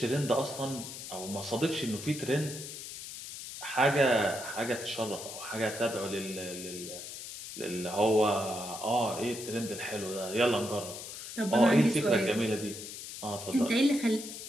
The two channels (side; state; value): left; noise; hiss, 10 dB below the sound